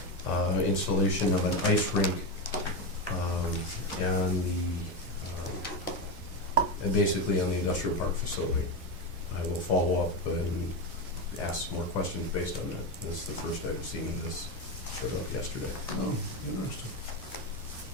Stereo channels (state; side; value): normal; both; correlation 0.14